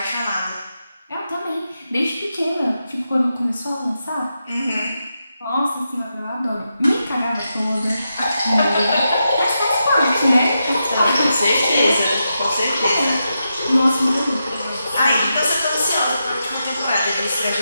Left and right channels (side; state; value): both; inverted; correlation -0.87